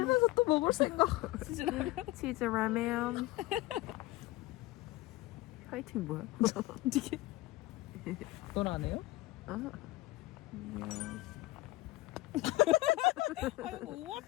또 먹을 생각. 치즈 라면. 화이팅 뭐야? 어떻게? 넌 안 해요? 아이고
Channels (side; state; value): right; quieter; 18.8 dB